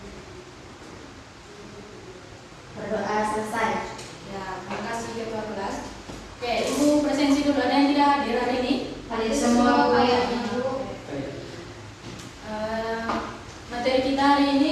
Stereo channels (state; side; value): identical; both; correlation 1.00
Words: Berdoa selesai. Ya, terima kasih ketua kelas. Oke, Ibu presensi dulu. Ada yang tidak hadir hari ini? Hadir semua, Bu. Materi kita hari